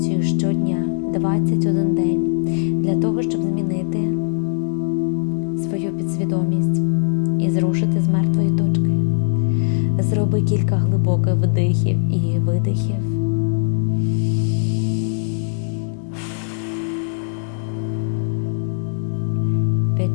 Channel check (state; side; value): silent; right; digital silence